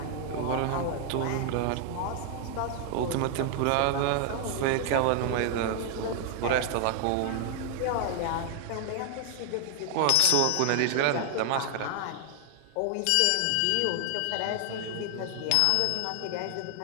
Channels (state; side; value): different; both; correlation 0.00